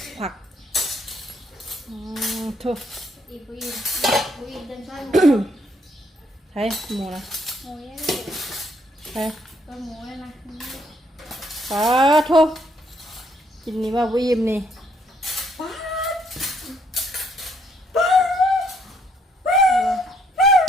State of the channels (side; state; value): both; normal; correlation 0.70